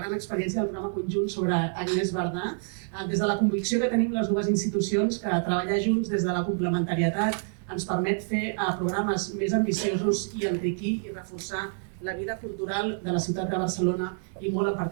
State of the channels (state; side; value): silent; left; 60 dB below the other